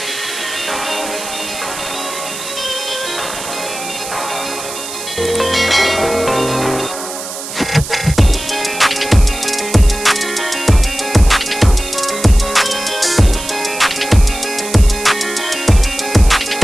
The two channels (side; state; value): right; noise; hiss, 9 dB below the sound